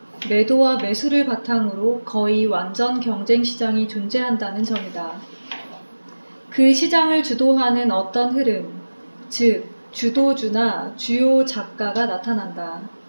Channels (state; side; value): inverted; both; correlation -1.00